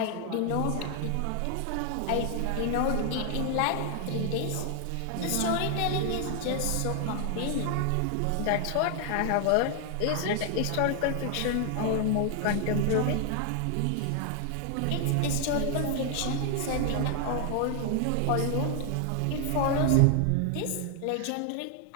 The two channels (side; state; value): both; different; correlation 0.00